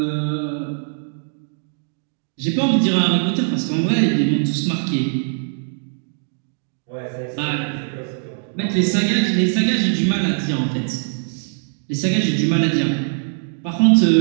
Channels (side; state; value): left; silent; digital silence